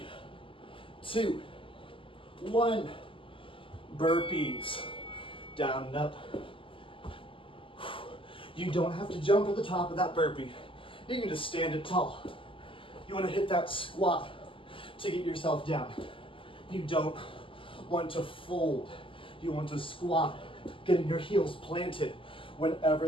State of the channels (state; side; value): late; right; 0.25 ms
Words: 2, 1. Burpees. Down and up. You don't have to jump at the top of that burpee. You can just stand it tall. You want to hit that squat to get yourself down. You don't want to fold. You want to squat, getting your heels planted